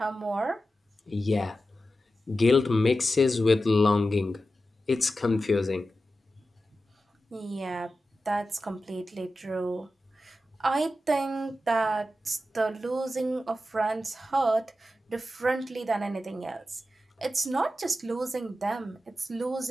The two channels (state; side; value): normal; both; correlation 0.92